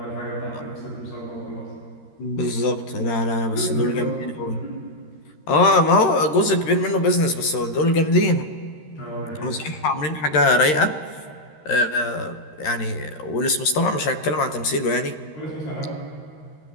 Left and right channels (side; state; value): right; late; 13 ms